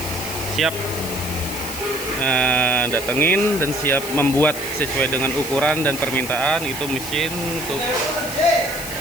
siap datengin dan siap membuat sesuai dengan ukuran dan permintaan. Itu mesin untuk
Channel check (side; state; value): left; noise; hiss, 9 dB below the sound